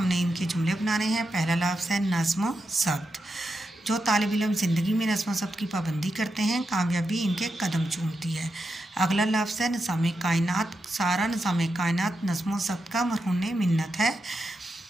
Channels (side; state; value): both; normal; correlation 0.86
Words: इनके जुमले बनाने हैं। पहला लफ्ज़ है नज़्म ज़ब्त। जो तालिब इल्म ज़िंदगी में नज़्म ज़ब्त की पाबंदी करते हैं, कामयाबी इनके कदम चूमती है। अगला लफ्ज़ है निज़ाम कायनात। सारा निज़ाम कायनात नज़्म ज़ब्त का मरहून मिन्नत है।